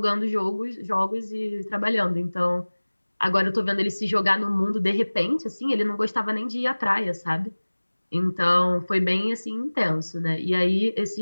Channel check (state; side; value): inverted; both; correlation -1.00